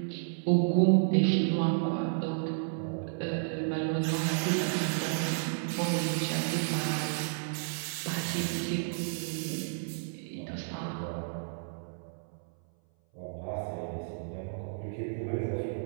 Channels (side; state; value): left; silent; 57 dB below the other